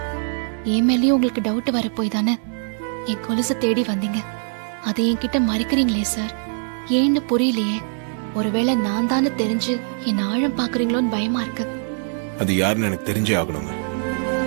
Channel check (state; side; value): silent; left; 64 dB below the other